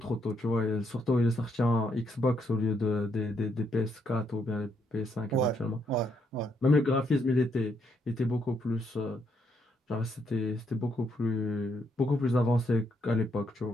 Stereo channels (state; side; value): normal; both; correlation 0.75